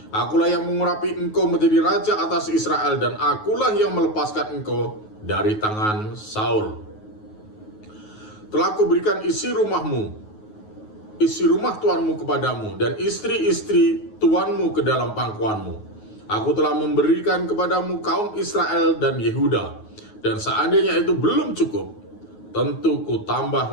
Akulah yang mengurapi engkau menjadi raja atas Israel, dan akulah yang melepaskan engkau dari tangan Saul. Telah kuberikan isi rumah tuanmu kepadamu, dan istri-istri tuanmu ke dalam pangkuanmu. Aku telah memberikan kepadamu kaum Israel dan Yehuda, dan seandainya itu belum cukup, tentu ku tambah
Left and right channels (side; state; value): right; late; 9.4 ms